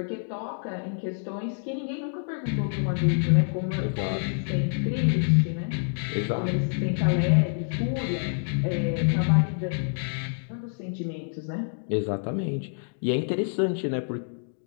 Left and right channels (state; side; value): silent; right; digital silence